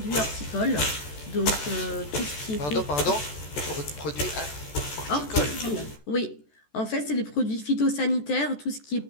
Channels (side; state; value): right; late; 14 ms